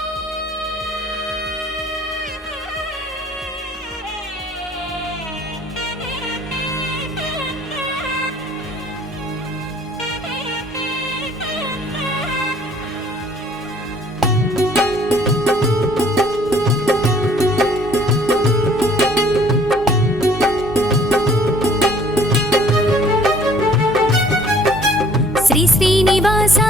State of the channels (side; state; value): both; normal; correlation 0.56